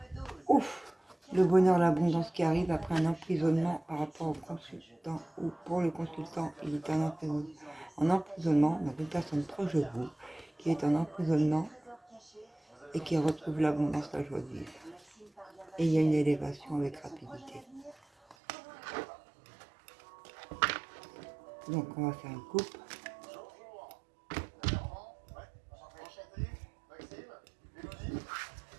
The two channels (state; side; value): drops out; left; at 18.4 s